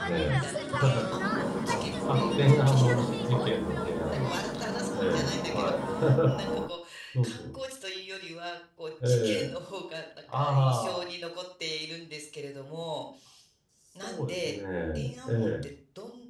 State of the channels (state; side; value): identical; both; correlation 1.00